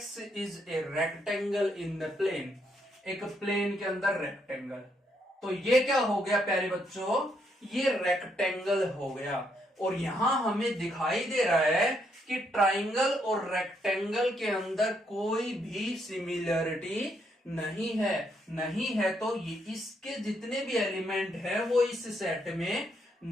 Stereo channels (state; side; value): normal; both; correlation 0.75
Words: is a rectangle in the plane, एक प्लेन के अंदर रेक्टेंगल। तो ये क्या हो गया प्यारे बच्चों, ये रेक्टेंगल हो गया। और यहां हमें दिखाई दे रहा है कि ट्राइंगल और रेक्टेंगल के अंदर कोई भी सिमिलरिटी नहीं है। तो ये इसके जितने भी एलिमेंट है वो इस सेट में